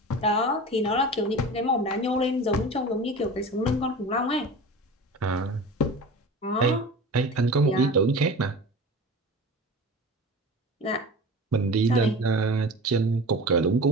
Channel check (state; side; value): normal; both; correlation 0.34